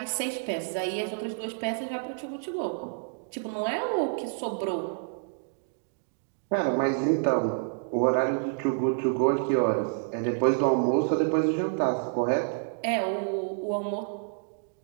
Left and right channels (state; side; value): silent; left; digital silence